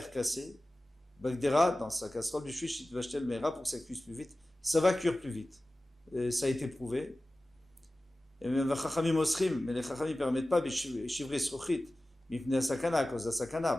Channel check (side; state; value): both; normal; correlation 0.96